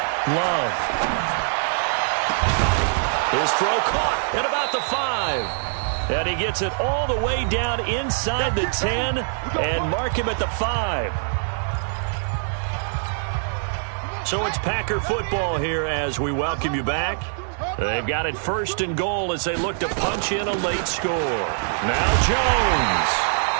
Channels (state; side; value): silent; left; digital silence